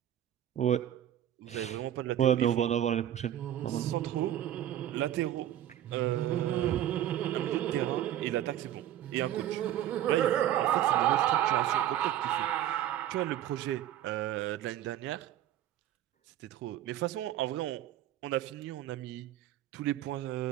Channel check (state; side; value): quieter; left; 11.8 dB